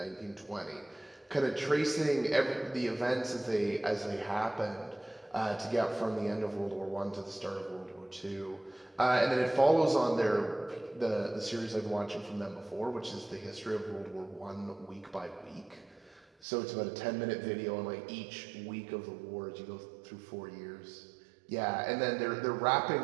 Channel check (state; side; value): drops out; left; at 16.2 s